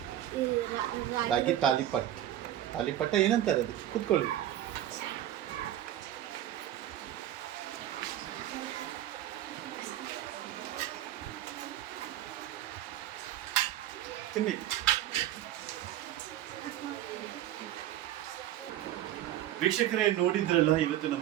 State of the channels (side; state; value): left; quieter; 12.8 dB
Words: ರಾಗಿ ತಾಲಿಪಟ್. ತಾಲಿಪಟ್ಟ ಏನಂತಾರೆ ಅದು? ಕೂತ್ಕೊಳ್ಳಿ. ತಿನ್ನಿ. ವೀಕ್ಷಕರೇ, ನೋಡಿದ್ರಲ್ಲ ಇವತ್ತು